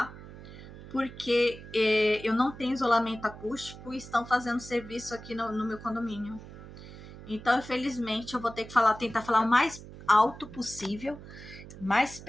porque eu não tenho isolamento acústico e estão fazendo serviço aqui no meu condomínio. Então, infelizmente, eu vou ter que tentar falar o mais alto possível, mais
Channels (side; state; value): right; noise; hum, 15 dB below the sound